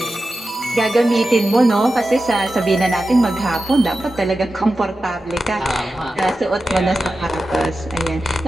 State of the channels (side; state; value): both; normal; correlation 0.92